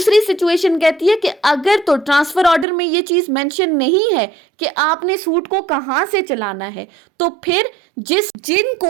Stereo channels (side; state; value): left; drops out; at 2.7 s